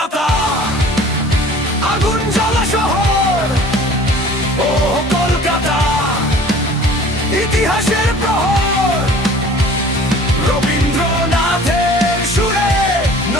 আগুন জ্বলা শহর। ওহ কলকাতা, ইতিহাসের প্রহর। রবীন্দ্রনাথের সুরে,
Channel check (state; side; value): normal; both; correlation 0.47